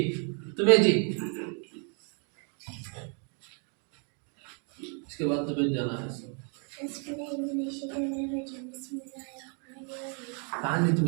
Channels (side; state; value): left; quieter; 39.9 dB